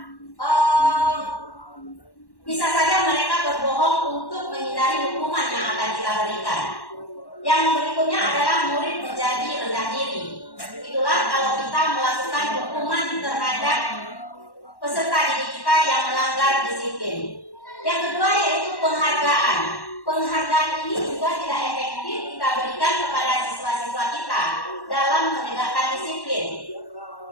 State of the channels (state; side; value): late; right; 1.1 ms